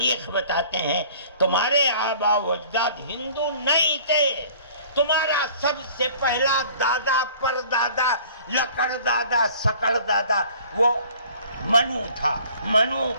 بتاتے ہیں۔ تمہارے آبا و اجداد ہندو نہیں تھے، تمہارا سب سے پہلا دادا پردادا لکڑ دادا سکڑ دادا وہ منو تھا۔ منو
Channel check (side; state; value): both; inverted; correlation -0.51